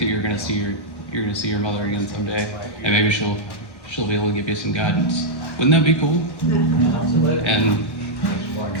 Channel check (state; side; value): late; right; 1.1 ms